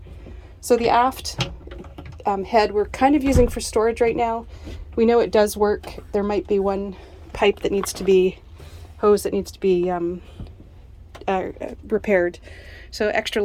So the aft head we're kind of using for storage right now. We know it does work. There might be one pipe that needs to be, hose that needs to be repaired. So extra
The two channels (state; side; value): identical; both; correlation 1.00